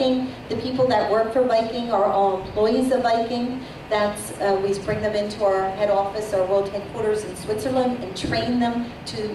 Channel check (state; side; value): identical; both; correlation 1.00